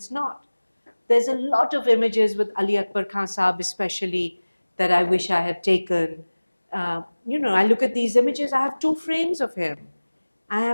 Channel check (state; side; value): inverted; both; correlation -1.00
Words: not. There's a lot of images with Ali Akbar Khan Sahab especially that I wish I had taken. I look at these images, I have 2 frames of him. I